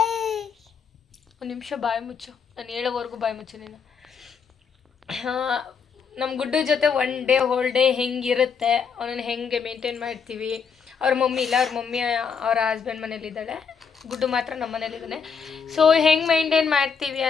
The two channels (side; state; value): right; quieter; 6.2 dB